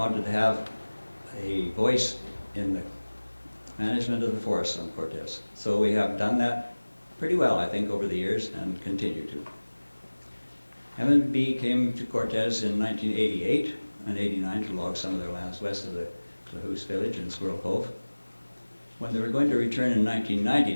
to have a voice in the management of the forests on Cortes. So we have done that pretty well, I think, over the years and continue to. M&B came to Cortes in 1988 and 89 to log some of their lands west of the Clahoose village in Squirrel Cove. When they were going to return in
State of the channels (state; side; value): inverted; both; correlation -1.00